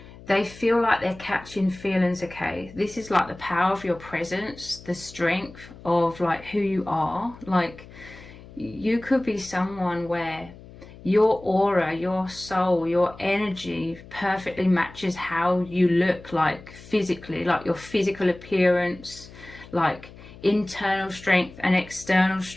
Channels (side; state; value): left; noise; hum, 19 dB below the sound